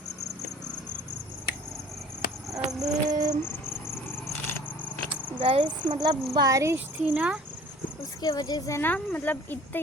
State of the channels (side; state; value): both; normal; correlation 0.49